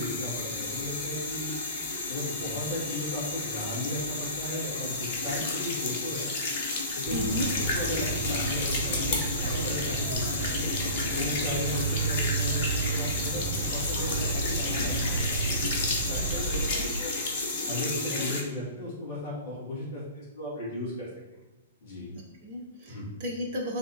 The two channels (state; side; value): inverted; both; correlation -0.36